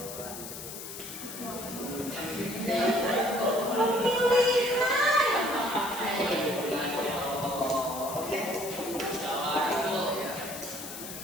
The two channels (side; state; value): left; noise; hiss, 10 dB below the sound